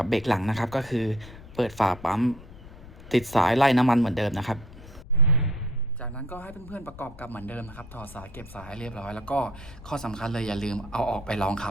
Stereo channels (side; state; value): left; noise; rumble, 17 dB below the sound